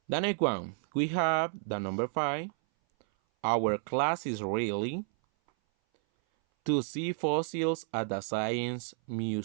The next one, we have the number 5. Our class is really to see fossils at the Science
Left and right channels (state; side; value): silent; left; 57 dB below the other